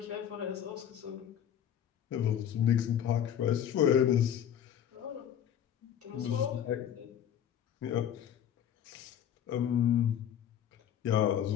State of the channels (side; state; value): right; quieter; 9.7 dB